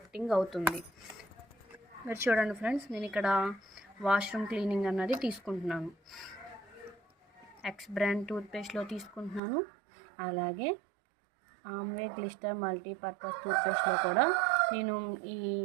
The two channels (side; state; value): left; drops out; at 9.4 s